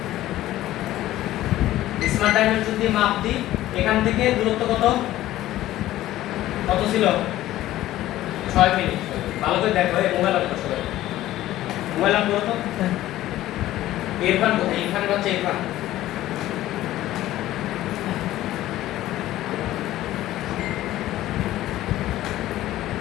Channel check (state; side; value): quieter; right; 14.8 dB